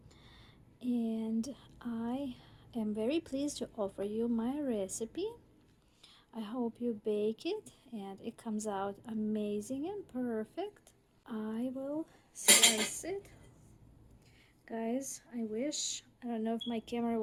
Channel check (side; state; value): both; identical; correlation 1.00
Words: and I am very pleased to offer you my recipe. I hope you bake it and it comes out amazing and perfect. I will slice it. Guys, I don't know if my camera